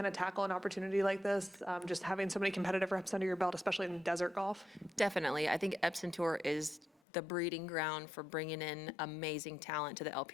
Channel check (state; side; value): drops out; right; at 7.0 s